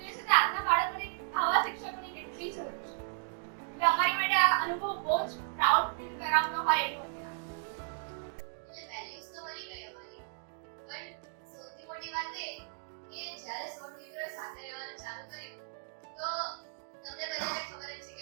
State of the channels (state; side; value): silent; left; digital silence